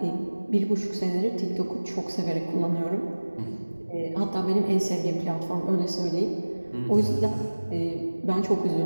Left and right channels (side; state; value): both; inverted; correlation -1.00